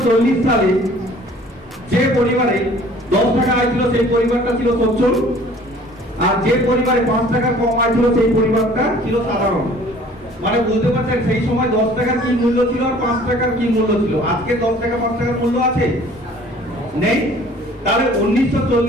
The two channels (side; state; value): both; normal; correlation 0.52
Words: সালে যে পরিবারে 10 টাকা আয় ছিল সেই পরিবারটা ছিল সচ্ছল, আর যে পরিবারে 5 টাকার কম আয় ছিল সেই পরিবারটা ছিল সাধারণ। মানে বুঝতে পারছেন সেই সময় 10 টাকার কি মূল্য ছিল আর 5 টাকার কি মূল্য ছিল? আজকে 10 টাকা 5 টাকার মূল্য আছে? নেই। তাহলে